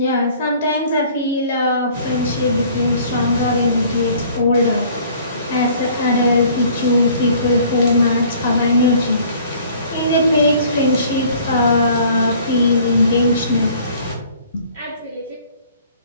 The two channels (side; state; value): both; inverted; correlation -0.54